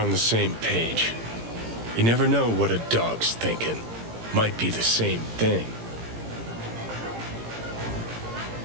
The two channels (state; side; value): late; left; 18 ms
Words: the same page. You never know what a dog's thinking. Might be the same thing.